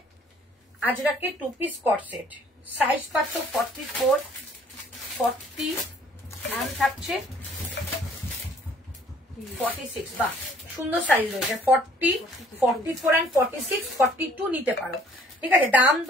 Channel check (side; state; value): both; normal; correlation 0.58